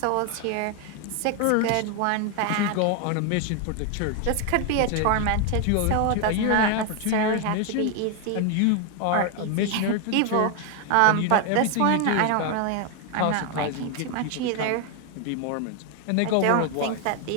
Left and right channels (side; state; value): both; different; correlation 0.01